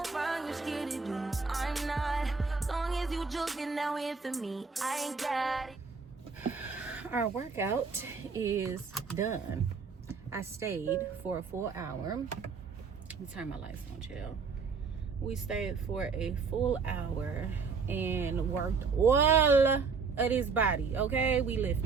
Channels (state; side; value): quieter; left; 5.1 dB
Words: for me, I ain't got it. Our workout is done. I stayed for a full hour. Let me turn my lights on, chill. We stayed for a full hour and worked all of his body, okay? We